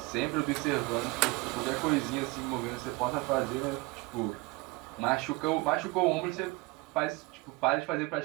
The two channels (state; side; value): quieter; left; 23.5 dB